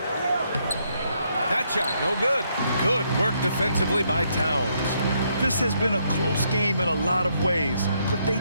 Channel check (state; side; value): inverted; both; correlation -0.74